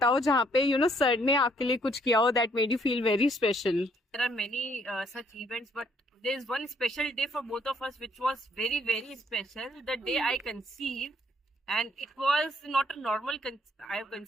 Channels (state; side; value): normal; both; correlation 0.67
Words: जहाँ पे सर ने आपके लिए कुछ किया हो that made you feel very special. There are many such events, but there is one special day for both of us, which was very, very special. The day I conceived, and it was not a normal. I have